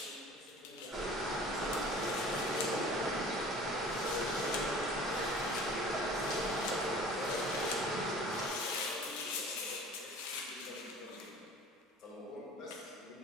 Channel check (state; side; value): normal; both; correlation 0.45